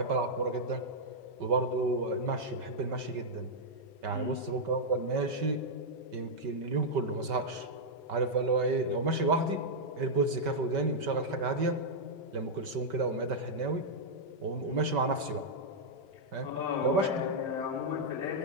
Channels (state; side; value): late; left; 5.2 ms